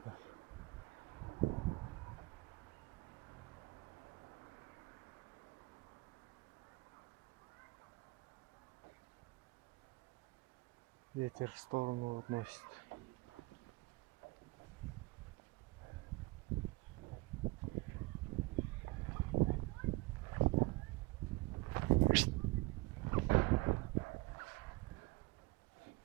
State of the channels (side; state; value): left; quieter; 22.5 dB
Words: Ветер в сторону относит.